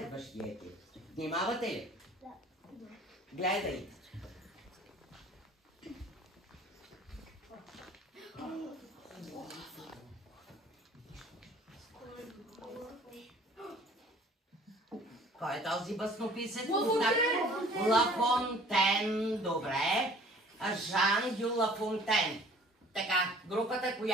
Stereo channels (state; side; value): normal; both; correlation 0.51